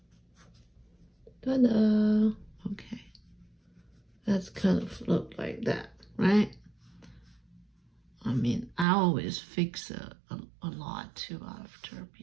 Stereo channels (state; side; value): drops out; left; at 8.8 s